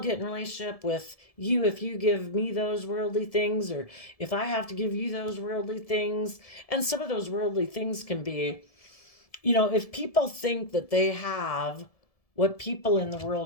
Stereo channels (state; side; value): late; right; 1.7 ms